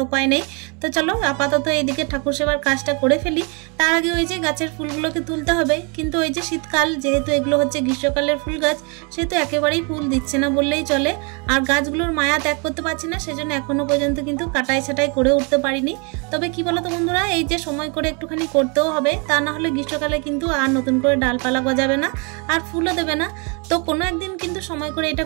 উপায় নেই। তো চলো আপাতত এইদিকে ঠাকুর সেবার কাজটা করে ফেলি। তার আগে ওই যে গাছের ফুলগুলোকে তুলতে হবে। কিন্তু ওই যে শীতকাল, যেহেতু এগুলো হচ্ছে গ্রীষ্মকালের ফুল গাছ, সেহেতু একেবারেই ফুল দিচ্ছে না বললেই চলে। আর গাছগুলোর মায়া ত্যাগ করতে পারছি না, সেজন্য এখনো পর্যন্ত কিন্তু কাটাই ছাটাই করে উঠতে পারিনি। তবে কি বলতো বন্ধুরা, এই যে সময় করে একটুখানি করতেও হবে, তা না হলে গ্রীষ্মকালে কিন্তু আর নতুন করে ডালপালা গজাবে না আর ফুলও দেবে না। তো কোনো একদিন কিন্তু সময় করে এটা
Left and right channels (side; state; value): left; quieter; 33.5 dB